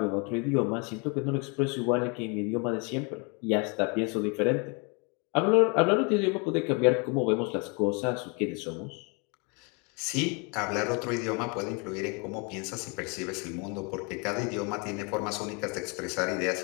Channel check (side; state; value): right; quieter; 32.8 dB